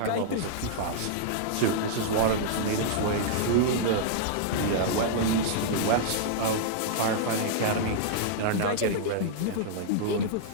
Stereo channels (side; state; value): both; different; correlation -0.01